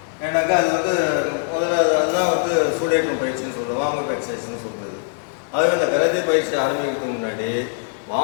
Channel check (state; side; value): silent; right; digital silence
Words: ஏன்னாக்கா அது முதல்ல அதுதான் சூடேற்றும் பயிற்சின்னு சொல்லுவோம், வார்ம் அப் எக்ஸசைஸ்ன்னு சொல்கிறது. அதுவே இந்த கராத்தே பயிற்சி ஆரம்பிக்கிறதுக்கு முன்னாடி